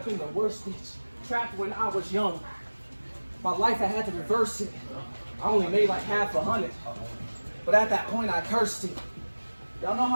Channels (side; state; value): both; inverted; correlation -1.00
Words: in the worst ditch. Trapped when I was young. My life, I had to reverse it. I only made like $500. But at that point, I cursed it. Y'all know